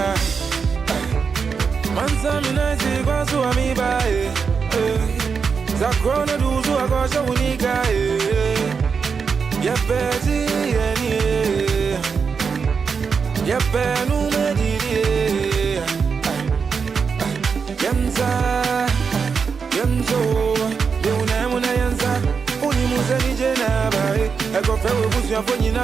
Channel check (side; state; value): left; quieter; 5.7 dB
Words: Mansa mi naisi kwa suwa mi bae. Zakrona duzu akosha unika Yepeti yeni Yepenu mediri Yemza Yemzo Deunemu na yenza Unimuze nije nabae Eko fewe busu ya fonyi